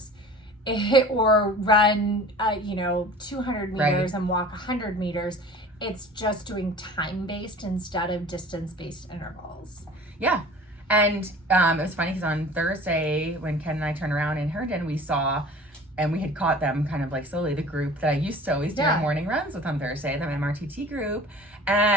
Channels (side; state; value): both; normal; correlation 0.43